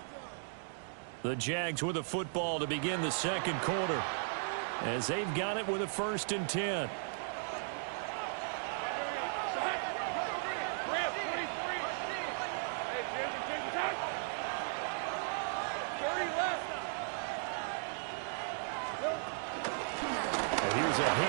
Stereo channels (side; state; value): left; silent; digital silence